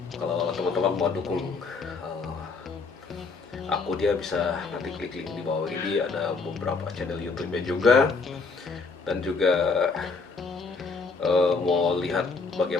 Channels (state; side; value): quieter; right; 4.4 dB